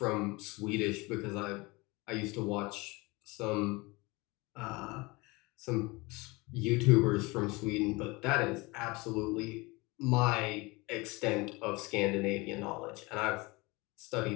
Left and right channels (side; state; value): right; quieter; 24.4 dB